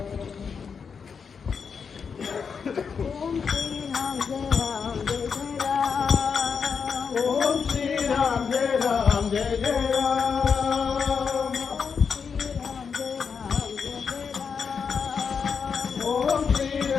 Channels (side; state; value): right; quieter; 6.1 dB